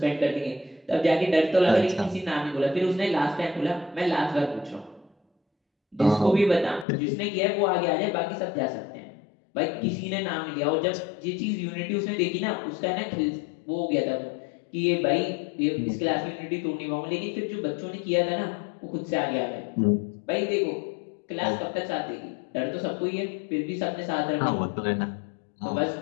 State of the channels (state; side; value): drops out; right; at 6.9 s